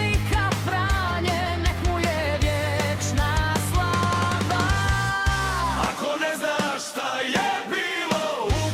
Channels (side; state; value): both; identical; correlation 1.00